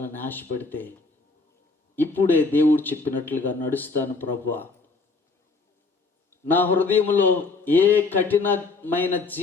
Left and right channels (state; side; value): quieter; right; 4.0 dB